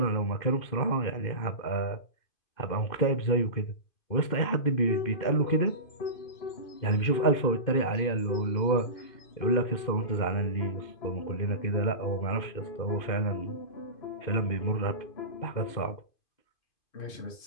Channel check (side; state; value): right; late; 2.5 ms